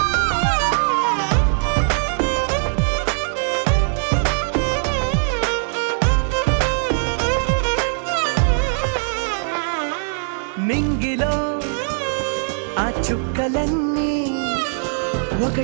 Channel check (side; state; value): left; silent; digital silence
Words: నింగిలో ఆ చుక్కలన్నీ